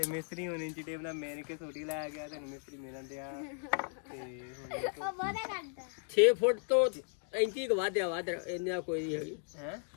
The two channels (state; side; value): silent; right; 54 dB below the other